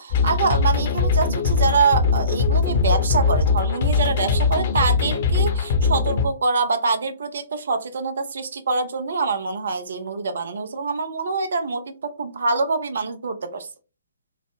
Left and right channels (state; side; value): inverted; both; correlation -0.48